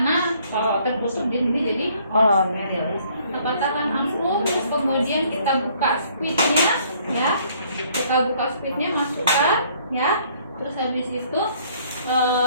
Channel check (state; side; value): inverted; both; correlation -0.62